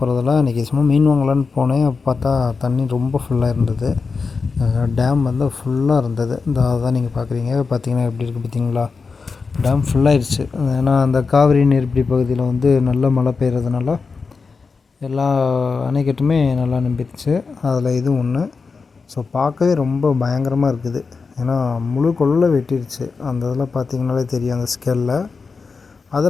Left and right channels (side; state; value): right; quieter; 4.7 dB